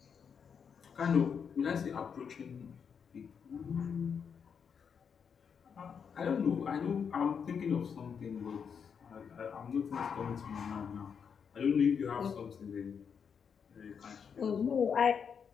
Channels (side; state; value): right; quieter; 6.8 dB